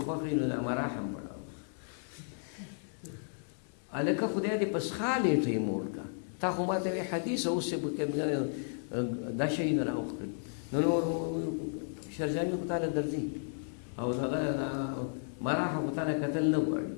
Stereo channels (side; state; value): right; silent; digital silence